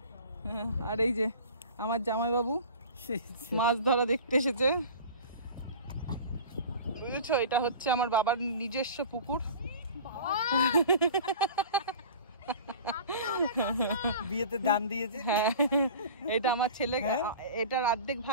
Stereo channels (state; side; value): inverted; both; correlation -0.39